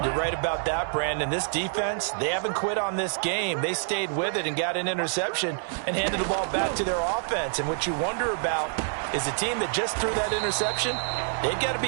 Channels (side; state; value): left; silent; digital silence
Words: You're right about that, Brandon. This defense, they haven't quit on this game. They stayed with it and got an interception and handed the ball back to their offense. And what you wonder about is a team that just threw that interception, they've got to